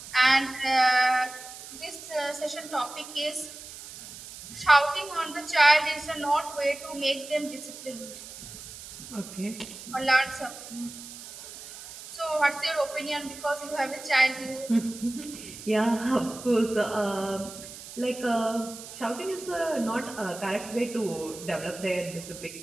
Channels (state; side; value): noise; right; hiss, 14 dB below the sound